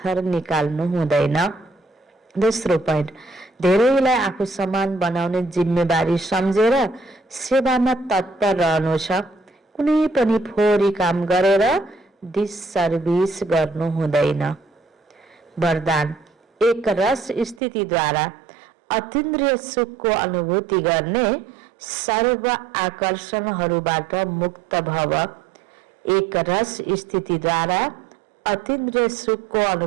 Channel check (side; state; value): left; drops out; at 17.6 s